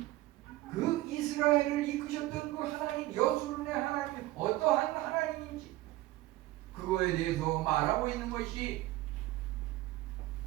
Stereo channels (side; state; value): left; quieter; 17.3 dB